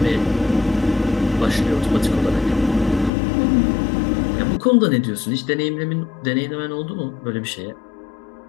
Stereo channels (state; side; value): drops out; right; at 3.1 s